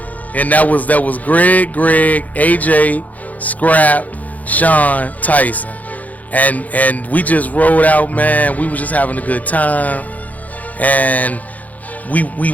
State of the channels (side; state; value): right; late; 0.077 ms